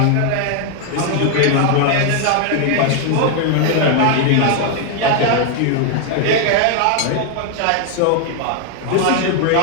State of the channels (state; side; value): different; both; correlation 0.00